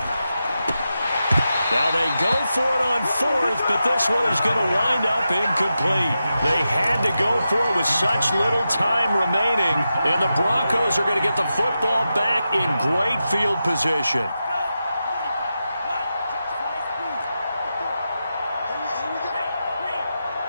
Now they go for it on 4th, but this one is going to wind up incomplete. They had to go for it with such little time remaining, and the Broncos are going to get the football back in great field position.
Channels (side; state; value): both; inverted; correlation -0.90